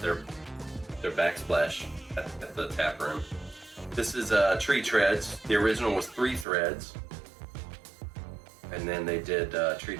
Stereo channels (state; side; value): drops out; left; at 6.5 s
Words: backsplash at the tap room. This is Tree Treads. The original was 3 threads, and then they did Tree